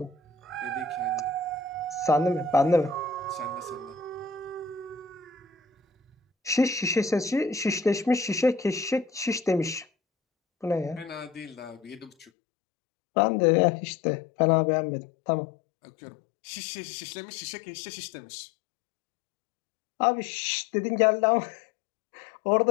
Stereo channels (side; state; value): right; drops out; at 12.2 s